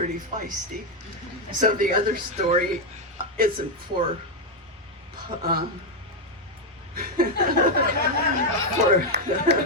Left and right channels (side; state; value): both; normal; correlation 0.04